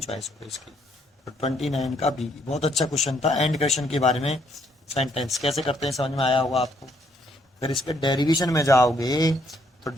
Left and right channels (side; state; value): both; normal; correlation 0.69